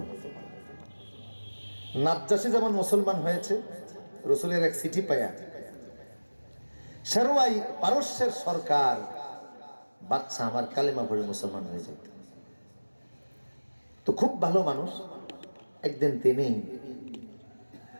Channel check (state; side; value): inverted; both; correlation -1.00